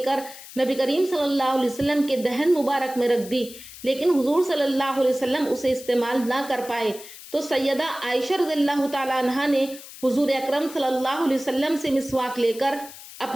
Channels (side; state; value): left; noise; hiss, 16 dB below the sound